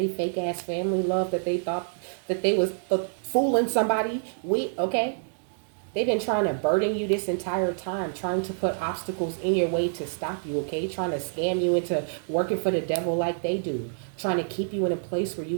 fake ass family love that they thought that they was fooling somebody with, okay? They've been trying to burden you this entire time, trying to put obstacles in your way to stop you, okay? Trying to scam you into working for the devil like they do. Trying to keep you in a place where you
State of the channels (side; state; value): left; silent; digital silence